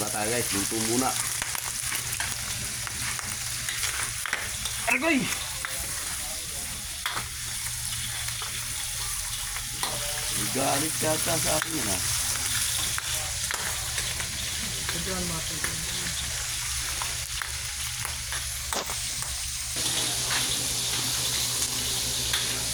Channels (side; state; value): both; identical; correlation 1.00